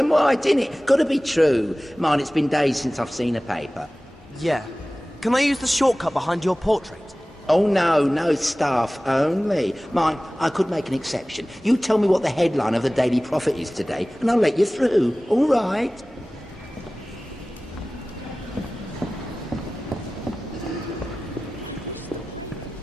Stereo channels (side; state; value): both; normal; correlation 0.97